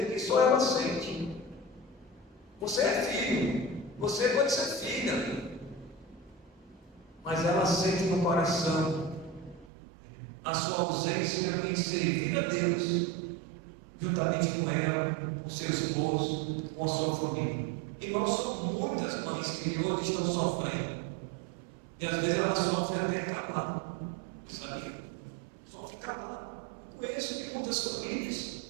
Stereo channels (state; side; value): drops out; left; at 9.7 s